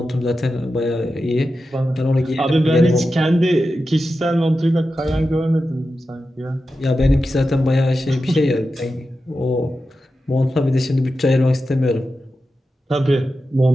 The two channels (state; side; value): normal; both; correlation 0.91